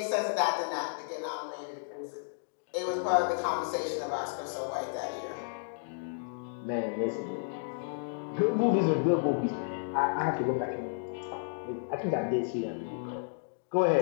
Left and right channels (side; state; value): right; silent; digital silence